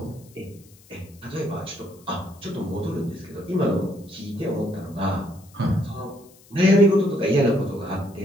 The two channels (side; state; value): left; noise; hiss, 27 dB below the sound